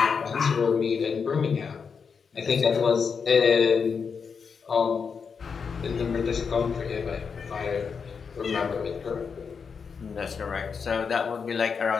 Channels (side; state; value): right; quieter; 5.9 dB